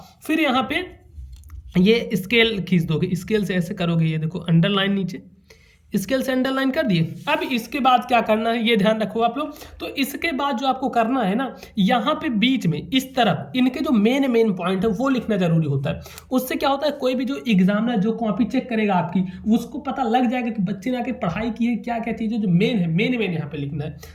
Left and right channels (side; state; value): both; identical; correlation 1.00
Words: फिर यहाँ पे ये स्केल खींच दोगे, स्केल से ऐसे करोगे, ये देखो अंडरलाइन नीचे, स्केल से अंडरलाइन कर दिए। अब इसके बाद क्या करना है ये ध्यान रखो आप लोग। तो इसके बाद जो आपको करना है ना, यहाँ पे बीच में इस तरफ इनके जो मेन पॉइंट है वो लिखना जरूरी होता है। उससे क्या होता है, कोई भी जो एग्जामिनर जो कॉपी चेक करेगा आपकी, उसको पता लग जाएगा कि बच्चे ने आके पढ़ाई की है, क्या क्या चीज़ें जो मेन है, मेन यहाँ पे लिखना है।